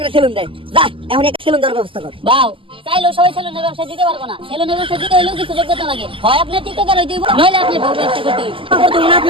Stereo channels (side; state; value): left; late; 0.25 ms